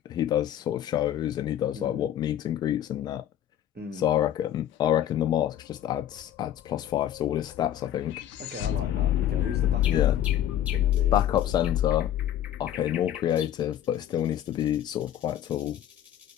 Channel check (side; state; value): right; quieter; 11.3 dB